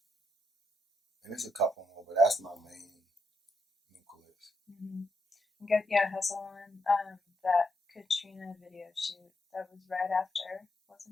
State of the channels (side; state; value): both; normal; correlation 0.79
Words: and there's a couple more, but that's my main nucleus. Hustle on that Katrina video shoot. That was right after,